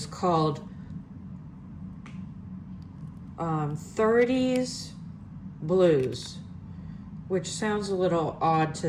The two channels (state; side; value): identical; both; correlation 1.00